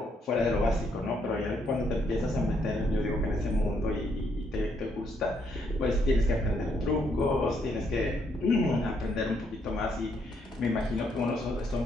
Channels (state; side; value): normal; both; correlation 0.73